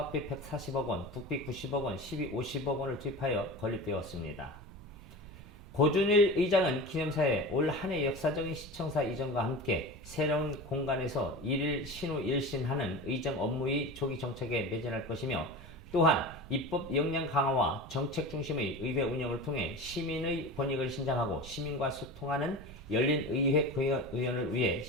140억 원, 국비 90억 원, 시비 50억 원을 투입하여 건립되었습니다. 고준일 의장은 기념사에 올 한해 역사적인 시청사 이전과 함께 새로운 공간에서 일일 신후 일신하는 의정 업무의 조기 정책에 매진할 것이며 또한 입법 역량 강화와 정책 중심의 의회 운영을 통해 시민의 권익을 신장하고 시민과 소통하는 열린 의회 의원을 위해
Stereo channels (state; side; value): noise; right; rumble, 17 dB below the sound